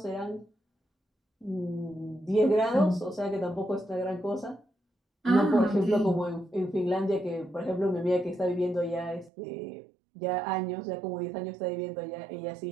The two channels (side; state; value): left; drops out; at 9.3 s